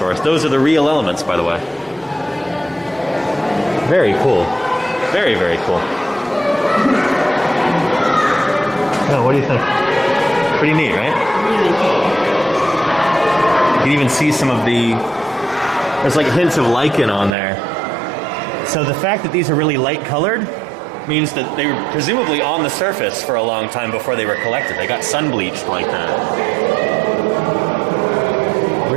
Those are the real elements, by the way. Very cool. Very, very cool. Oh, what do you think? Pretty neat, right? Really cool. You can even see some of the... There's like hints of lichen on there. So the fact that these are really light colored means that they were presumably on the surface for a long time before they were collected. They got sun bleached like that.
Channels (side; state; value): left; drops out; at 17.3 s